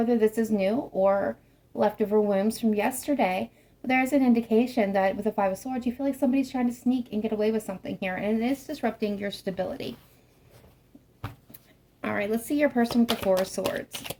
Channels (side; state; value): both; identical; correlation 1.00